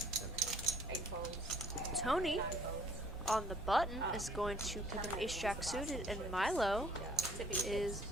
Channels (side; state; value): both; normal; correlation 0.58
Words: 8 folds. Tony 9 folds. on the button is going to pick up ace jack suited, and Milo is